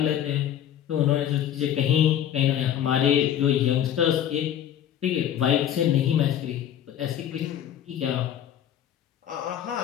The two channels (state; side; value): quieter; right; 10.3 dB